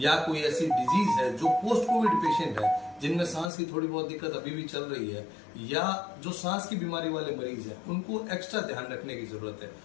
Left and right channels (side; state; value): right; drops out; at 3.5 s